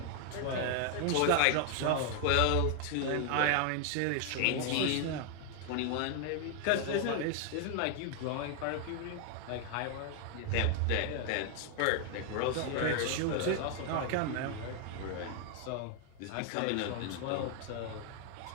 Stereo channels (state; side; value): different; both; correlation 0.00